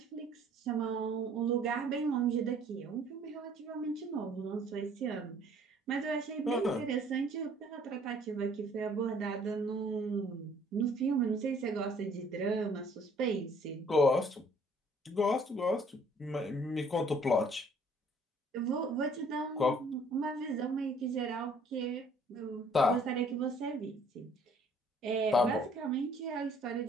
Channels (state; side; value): normal; both; correlation 0.58